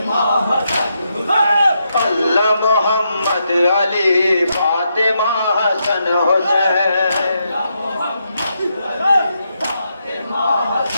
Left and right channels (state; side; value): inverted; both; correlation -0.81